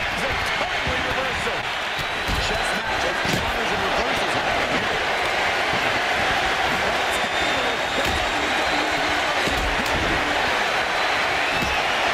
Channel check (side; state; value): both; identical; correlation 1.00